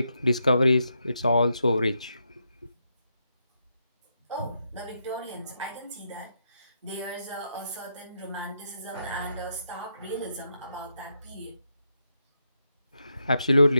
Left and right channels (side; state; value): both; inverted; correlation -0.82